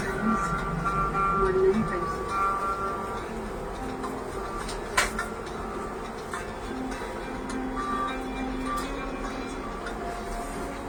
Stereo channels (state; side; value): identical; both; correlation 1.00